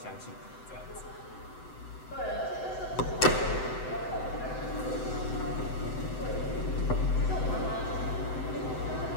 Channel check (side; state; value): right; late; 7.9 ms